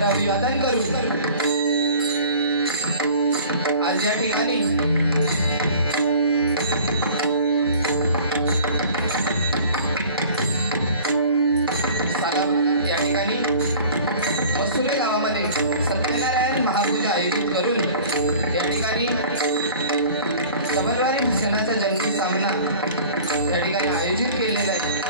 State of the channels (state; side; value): inverted; both; correlation -0.46